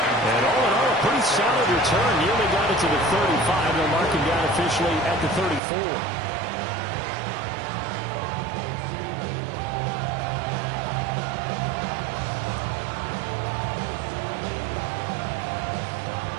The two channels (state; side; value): drops out; left; at 5.6 s